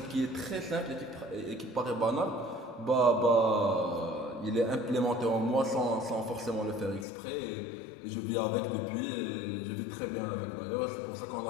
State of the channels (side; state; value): right; drops out; at 7.1 s